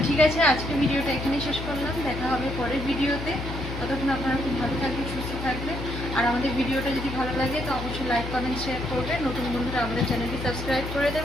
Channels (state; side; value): noise; left; hum, 7 dB below the sound